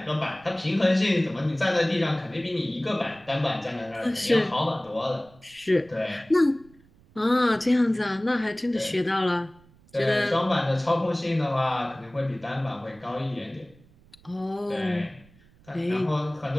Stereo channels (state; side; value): noise; right; rumble, 28 dB below the sound